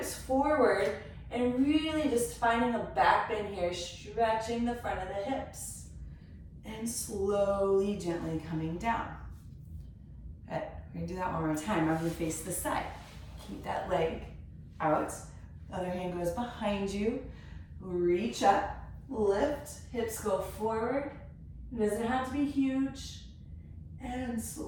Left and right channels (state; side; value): identical; both; correlation 1.00